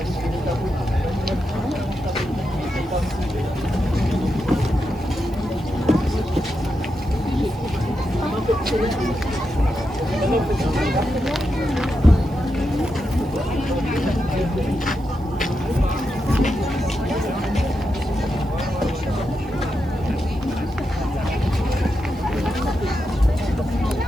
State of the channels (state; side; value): noise; right; hiss, 29 dB below the sound